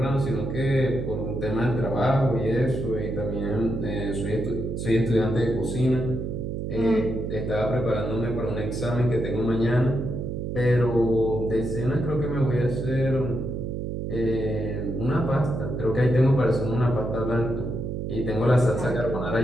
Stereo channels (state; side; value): noise; right; hum, 4 dB below the sound